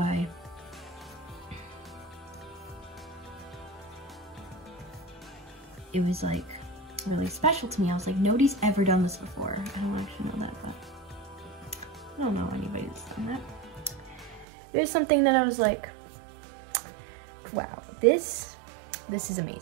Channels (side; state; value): left; drops out; at 14.5 s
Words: it was like really special to me. I was like, nobody's ever done this before. I don't actually know that, but I don't know anybody that's done that. It was something that I was like, wow, this is